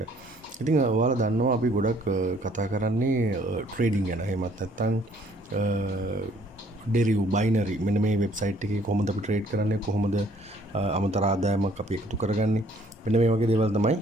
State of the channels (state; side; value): normal; both; correlation 0.61